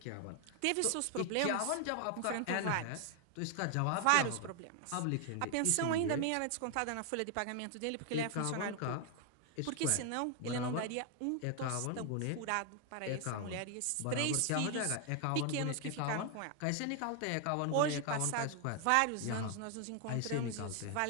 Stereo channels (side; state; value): both; different; correlation 0.00